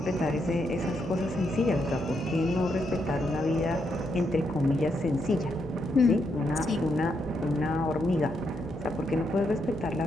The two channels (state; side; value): normal; both; correlation 0.79